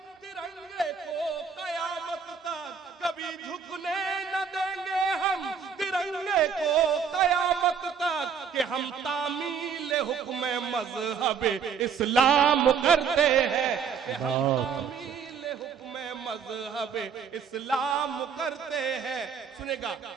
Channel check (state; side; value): quieter; left; 6.7 dB